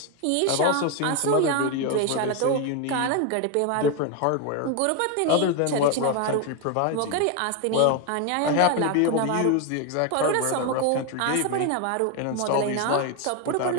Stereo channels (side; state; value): both; different; correlation 0.02